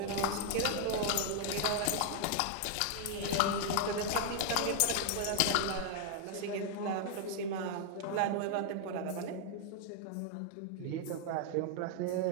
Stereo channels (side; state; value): both; different; correlation 0.00